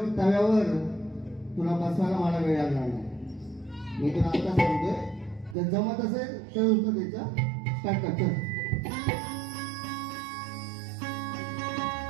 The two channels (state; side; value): drops out; left; at 5.6 s